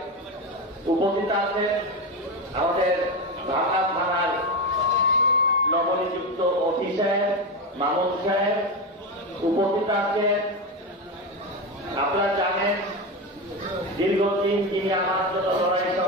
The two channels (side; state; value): both; normal; correlation 0.16